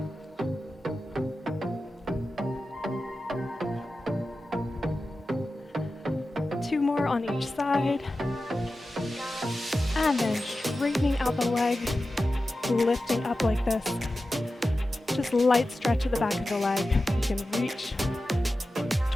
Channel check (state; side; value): normal; both; correlation 0.93